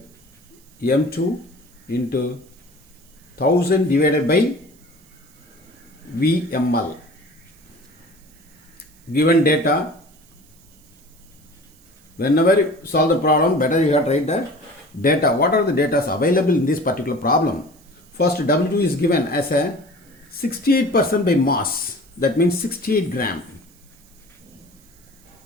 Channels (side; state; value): right; noise; hiss, 28 dB below the sound